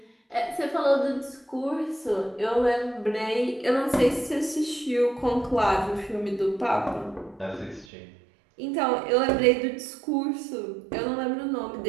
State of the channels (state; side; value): drops out; left; at 7.9 s